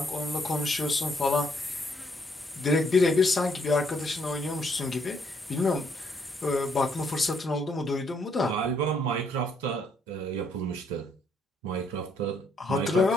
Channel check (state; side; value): normal; both; correlation 0.71